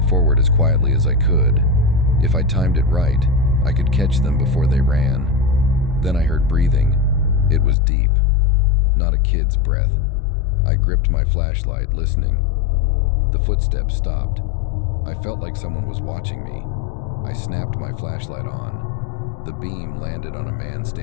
forward as quietly as I could. If I timed it right, I could catch them before they ran. Then I heard breathing. It was deep. Not a kid's breath. I gripped my flashlight, listening. The footsteps stopped. I felt like someone was watching me. I snapped my flashlight on. The beam landed on a man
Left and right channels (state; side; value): drops out; right; at 7.8 s